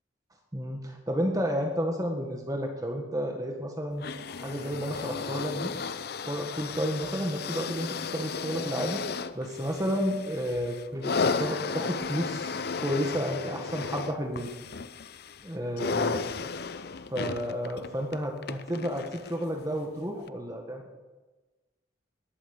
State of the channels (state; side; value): normal; both; correlation 0.48